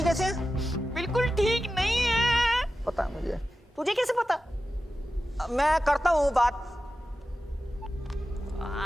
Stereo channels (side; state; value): both; normal; correlation 0.93